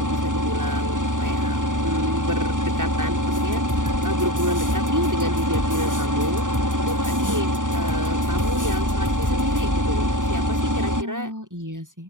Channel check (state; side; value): late; left; 0.88 ms